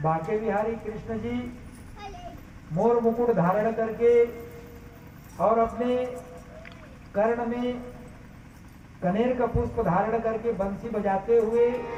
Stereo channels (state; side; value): identical; both; correlation 1.00